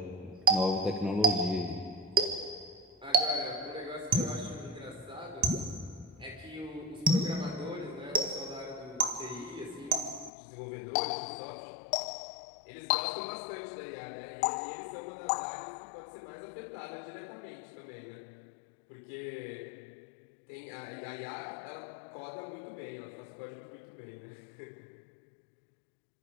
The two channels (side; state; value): right; drops out; at 10.3 s